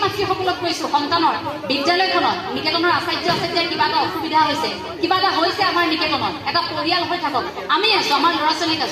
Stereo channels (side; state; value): both; identical; correlation 1.00